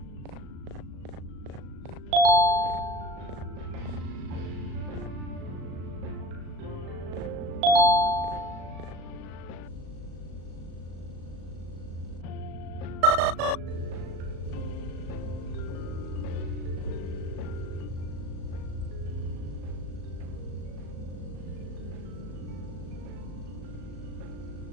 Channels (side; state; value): left; late; 37 ms